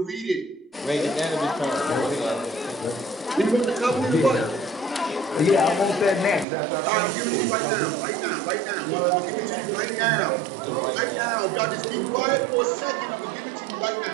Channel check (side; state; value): left; drops out; at 6.5 s